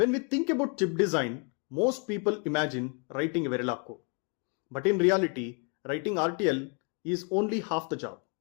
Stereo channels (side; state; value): right; quieter; 33.9 dB